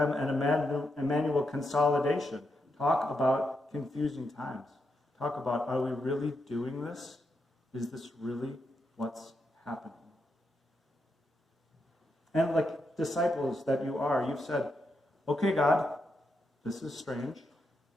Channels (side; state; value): both; normal; correlation 0.83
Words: and Emmanuel consolidation. Talk about confusing times. Talk about, are we really doing this? Is this really what's happening? And like disciples that you are, you've said, okay, God, this is strange,